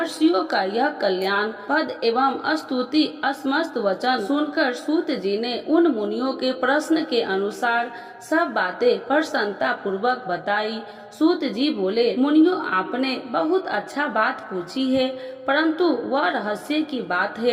का यह कल्याण पद एवं स्तुति असमस्त वचन सुनकर सूत जी ने उन मुनियों के प्रश्न के अनुसार सब बातें प्रसन्नता पूर्वक बताई। सूत जी बोले, मुनियों, आपने बहुत अच्छा बात पूछी है, परंतु वह रहस्य की बात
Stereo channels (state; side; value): identical; both; correlation 1.00